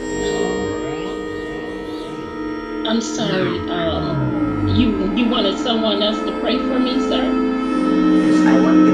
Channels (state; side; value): identical; both; correlation 1.00